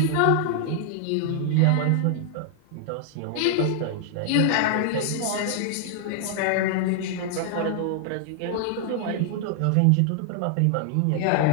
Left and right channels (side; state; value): both; different; correlation 0.00